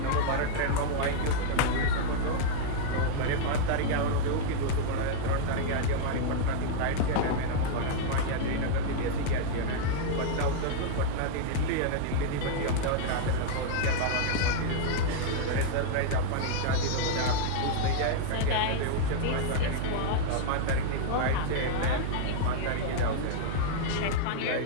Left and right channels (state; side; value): different; both; correlation -0.01